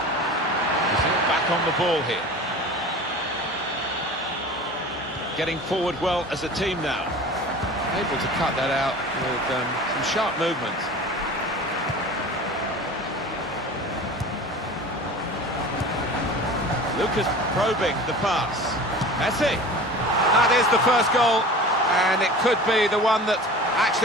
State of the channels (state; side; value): normal; both; correlation 0.38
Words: Back on the ball here. Getting forward well as a team now. Able to cut that out with some sharp movement. Lucas probing the pass. Messi. That is the first goal, and it could be the one that